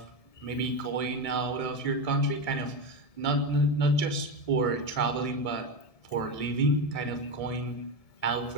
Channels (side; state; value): right; late; 1.7 ms